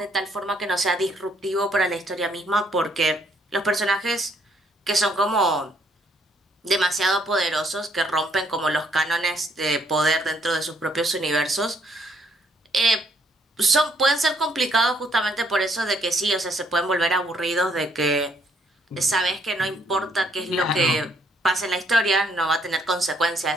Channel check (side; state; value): both; normal; correlation 0.69